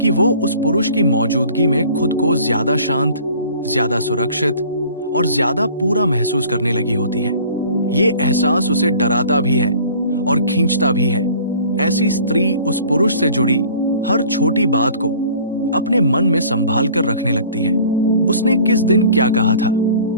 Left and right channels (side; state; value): both; inverted; correlation -0.49